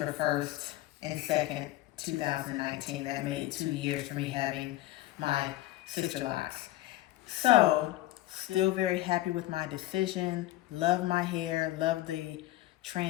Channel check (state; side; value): quieter; right; 16.0 dB